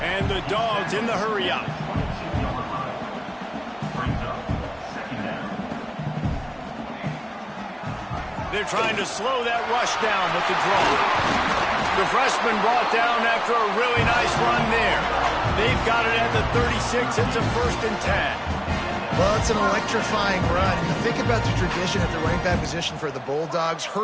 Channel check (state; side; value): identical; both; correlation 1.00